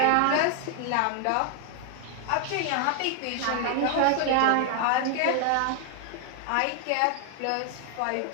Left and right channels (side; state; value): both; different; correlation 0.00